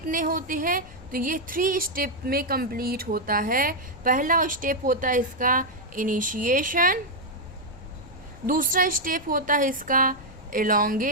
होते हैं, तो ये 3 स्टेप में कंप्लीट होता है। पहला स्टेप होता है इसका इनिशिएशन, दूसरा स्टेप होता है इसका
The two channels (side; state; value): left; noise; rumble, 19 dB below the sound